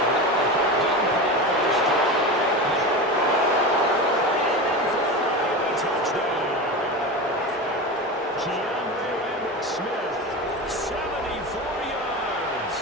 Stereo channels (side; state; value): both; normal; correlation 0.25